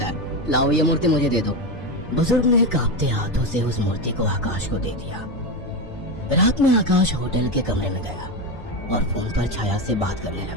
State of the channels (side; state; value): both; normal; correlation 0.14